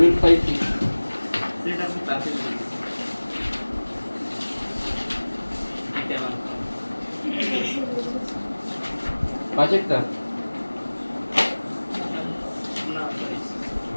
5-6 সেটা আমি ক্লাসে 5-এরটা না সরি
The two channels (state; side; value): inverted; both; correlation -1.00